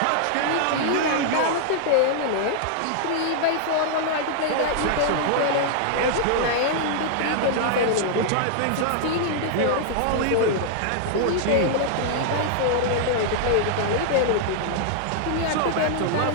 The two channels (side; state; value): both; different; correlation -0.01